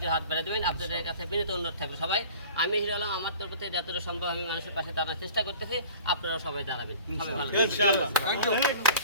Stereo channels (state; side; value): inverted; both; correlation -0.45